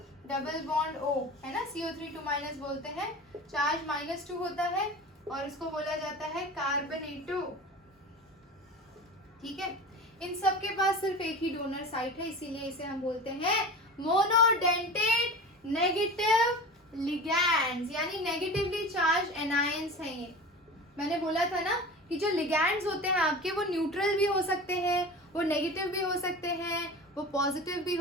double bond O है ना, CO3 2 माइनस बोलते हैं, चार्ज -2 होता है, और इसको बोला जाता है कार्बोनेटो, ठीक है। इन सब के पास सिर्फ एक ही डोनर साइट है, इसीलिए इसे हम बोलते हैं मोनोडेंटेट नेगेटिव लिगैंड्स, यानी नेगेटिवली चार्ज एनायंस हैं ये। मैंने बोला था ना कि जो लिगैंड्स होते हैं आपके, वो न्यूट्रल भी हो सकते हैं, वो नेगेटिव भी हो सकते हैं, वो पॉजिटिव भी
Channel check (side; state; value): both; normal; correlation 0.33